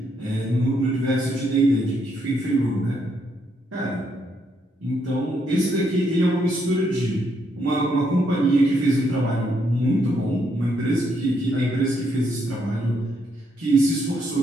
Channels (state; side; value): normal; both; correlation 0.75